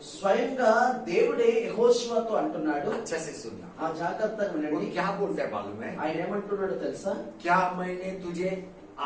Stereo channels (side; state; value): both; identical; correlation 1.00